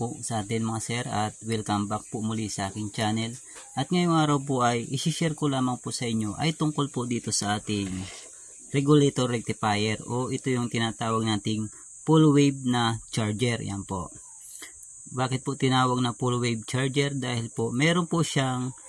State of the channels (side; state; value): both; identical; correlation 1.00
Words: sa atin mga sir at welcome back po muli sa aking channel. At ngayong araw po ay isi-share ko lamang po sa inyo ay tungkol po dito sa ating regulator rectifier o ito yung tinatawag nating full wave na charger. Yan po. Bakit po tinawag na full wave charger? Dahil po meron po siyang